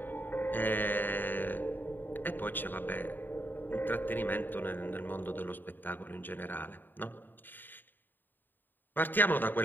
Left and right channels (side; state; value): right; late; 0.091 ms